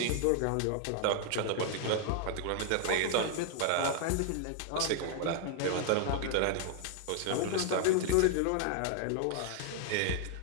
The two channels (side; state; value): both; different; correlation 0.00